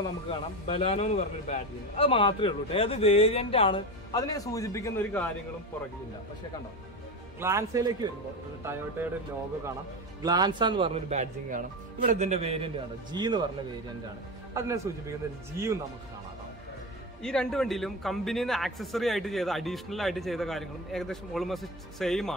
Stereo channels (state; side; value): normal; both; correlation 0.21